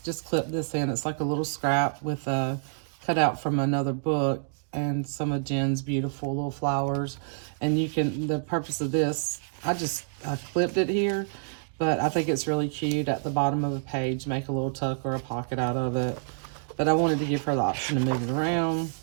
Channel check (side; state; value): left; silent; digital silence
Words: just clipped this in. It's like a little scrap with a cutout from another book and some of Jen's beautiful little flowers. And you can, the purpose of this, I clipped it here, but I think it's really cute at the bottom of a page, make a little tuck or a pocket out of it. But I wanted to give her the option to move it around.